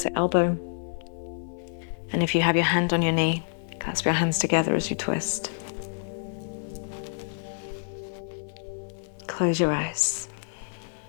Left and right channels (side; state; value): right; silent; 57 dB below the other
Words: elbow. And if you have your hand on your knee, clasp your hands together as you twist. Close your eyes.